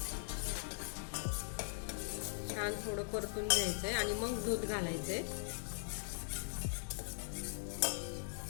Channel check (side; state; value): right; silent; digital silence